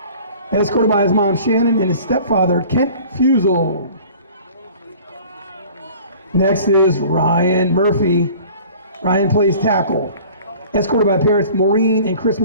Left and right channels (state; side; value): inverted; both; correlation -0.47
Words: escorted by his mom Shannon and his stepfather Kent Fusel. Next is Ryan Murphy. Ryan plays tackle, escorted by parents Maureen and Chris